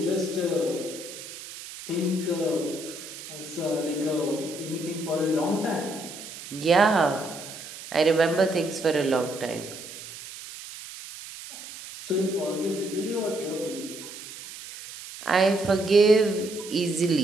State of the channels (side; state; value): right; noise; hiss, 13 dB below the sound